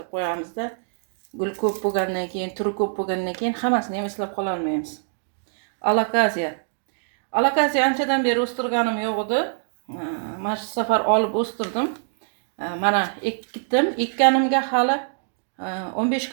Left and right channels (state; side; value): silent; left; digital silence